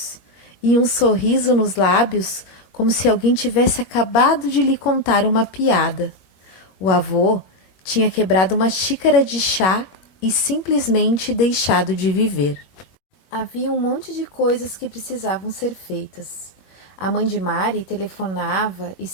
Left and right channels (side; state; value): right; late; 21 ms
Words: e um sorriso nos lábios, como se alguém tivesse acabado de lhe contar uma piada. O avô tinha quebrado uma xícara de chá e simplesmente deixado de viver. Havia um monte de coisas que precisavam ser feitas. A mãe de Mari telefonava,